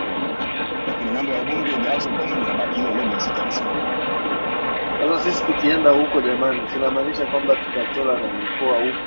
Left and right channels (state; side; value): inverted; both; correlation -1.00